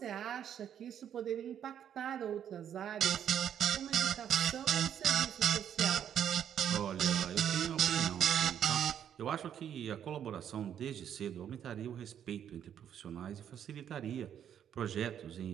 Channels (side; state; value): left; quieter; 9.4 dB